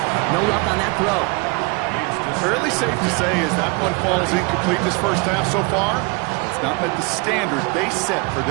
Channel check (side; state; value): left; quieter; 29.7 dB